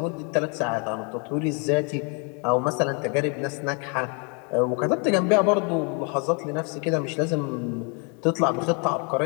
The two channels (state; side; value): quieter; right; 36.0 dB